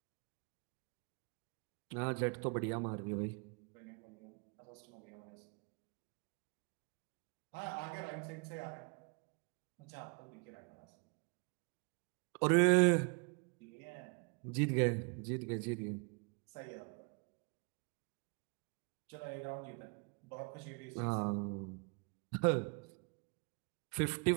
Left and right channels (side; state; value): left; quieter; 35.5 dB